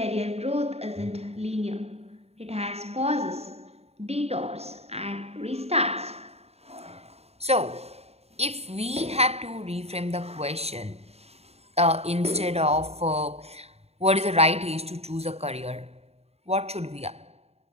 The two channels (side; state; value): left; late; 0.30 ms